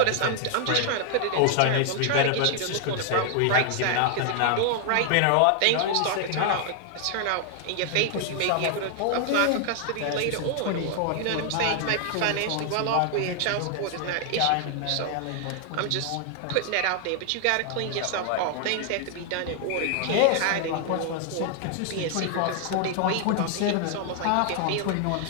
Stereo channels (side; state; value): both; different; correlation 0.00